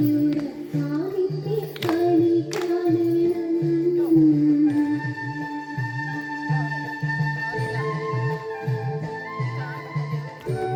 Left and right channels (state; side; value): identical; both; correlation 1.00